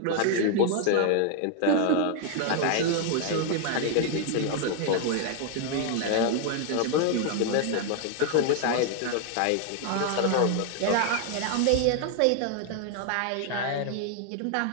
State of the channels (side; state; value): both; different; correlation 0.00